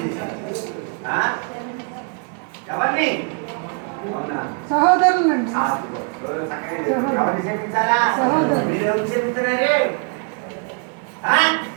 చేశారు. ఎవరిని? సహోదరులండి. ఎవరిని క్షమించాలా? మీరు ఎవరు క్షమిస్తున్నారు?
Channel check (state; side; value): quieter; left; 40.0 dB